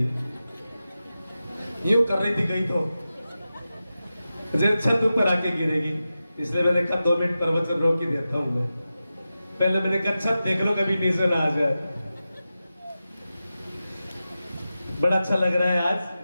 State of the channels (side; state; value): both; inverted; correlation -0.93